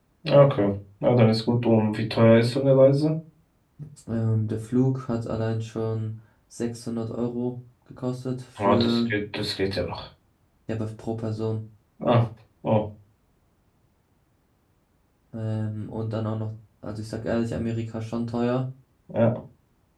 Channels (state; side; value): identical; both; correlation 1.00